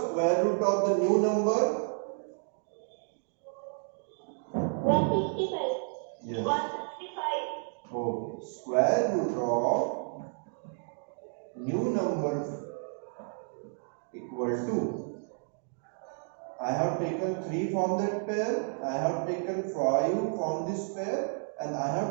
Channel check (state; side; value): silent; left; 57 dB below the other